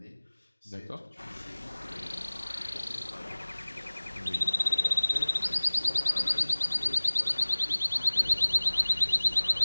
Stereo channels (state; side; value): inverted; both; correlation -1.00